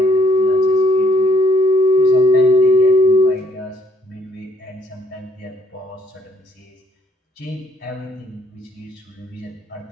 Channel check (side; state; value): both; normal; correlation 0.66